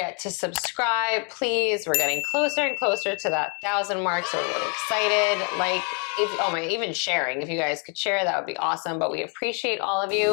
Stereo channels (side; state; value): right; quieter; 37.5 dB